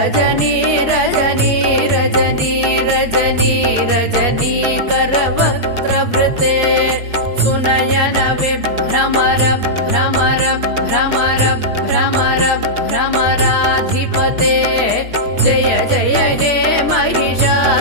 रजनी रजनी रजनी रजनीकरवक्त्रवृते सुनयन विभ्रमर भ्रमर भ्रमर भ्रमर भ्रमराधिपते जय जय हे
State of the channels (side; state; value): left; late; 4.7 ms